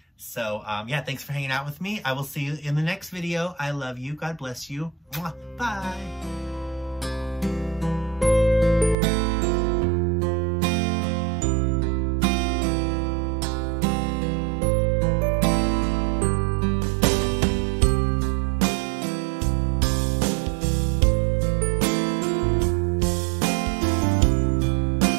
So, yeah, thanks for hanging out with me. I will see you in the next video. I love you. God bless you. Mwah. Bye.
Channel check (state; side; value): drops out; left; at 9.0 s